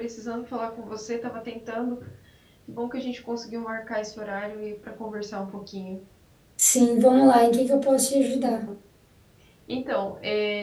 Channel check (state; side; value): identical; both; correlation 1.00